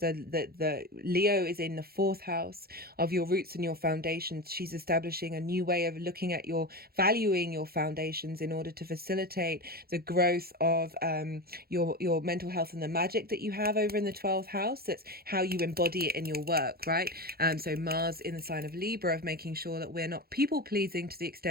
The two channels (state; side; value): late; left; 0.44 ms